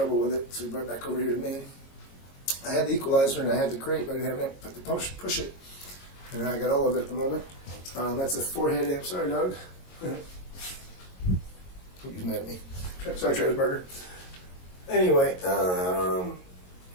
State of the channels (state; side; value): late; right; 22 ms